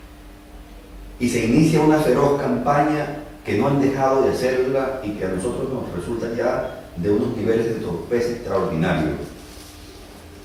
Y se inicia una feroz campaña que no han dejado de hacerla y que a nosotros nos resulta ya de unos niveles de torpeza extraordinarios.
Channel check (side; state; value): both; identical; correlation 1.00